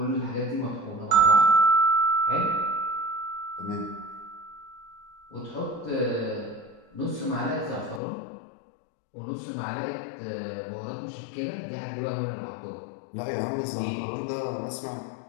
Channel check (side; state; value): right; drops out; at 8.0 s